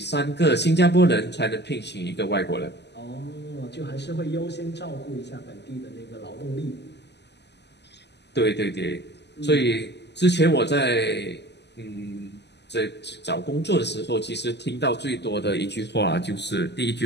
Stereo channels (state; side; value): late; right; 0.50 ms